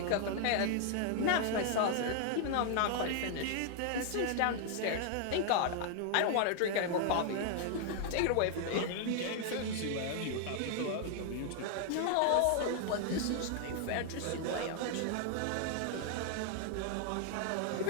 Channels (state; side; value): different; both; correlation 0.00